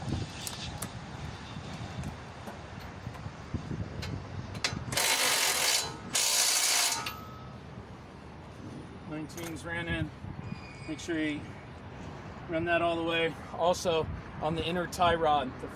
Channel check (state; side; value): identical; both; correlation 1.00